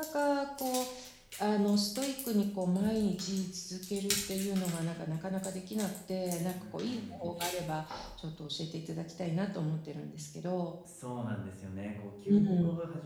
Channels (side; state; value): both; identical; correlation 1.00